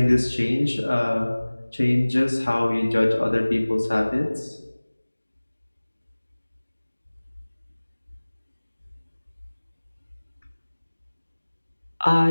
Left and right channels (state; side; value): inverted; both; correlation -1.00